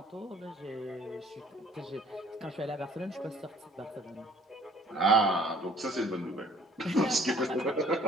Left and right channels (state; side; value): normal; both; correlation 0.55